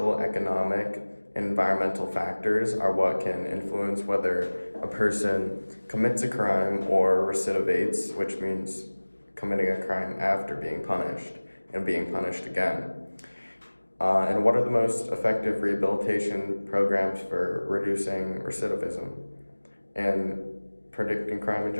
economic, and environmental factors are what can influence whether a person commits a crime or recidivates, which means committing a crime after being punished and being punished again. And what are the most effective rehabilitation programs for reducing recidivism and predicting crime in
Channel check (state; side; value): inverted; both; correlation -1.00